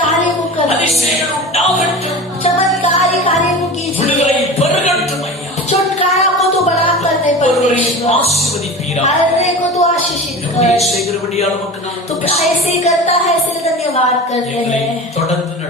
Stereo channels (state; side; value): normal; both; correlation 0.32